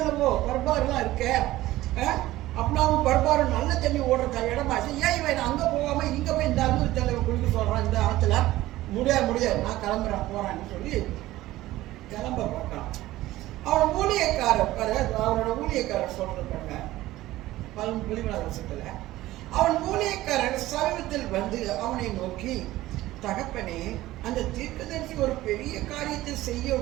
பர்பாருலாம் இருக்க, அப்னாவும் பர்பாரும் நல்ல தண்ணி ஓடுற இடமாச்சு, ஏன் இவன் அங்க போகாம இங்க போய் இந்த அன்பு தலைவர் குளிக்க சொல்றான் இந்த ஆத்துல? முடியாது, நான் கிளம்புறேன் போறான்னு சொல்லி கிளம்ப பார்க்கலாம். அவனோட ஊழியக்காரர் சொல்றாங்க 17 வருஷத்துல அவன் ஊழியக்காரர் சமீபத்தில் வந்து அவனை நோக்கி, தகப்பனே, அந்த தீர்க்கதரிசி ஒரு பெரிய காரியத்தை செய்ய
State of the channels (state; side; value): quieter; left; 16.4 dB